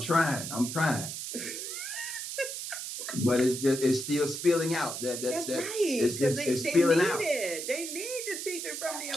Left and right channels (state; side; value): noise; right; hiss, 6 dB below the sound